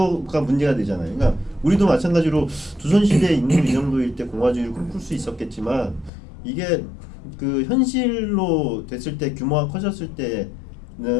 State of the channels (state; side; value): drops out; right; at 6.1 s